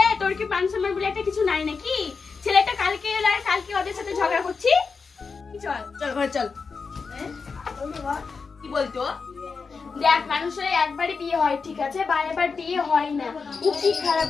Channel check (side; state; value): right; quieter; 5.0 dB